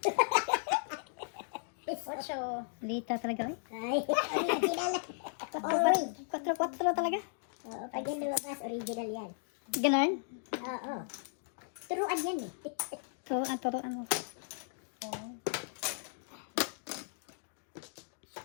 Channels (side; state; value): right; silent; digital silence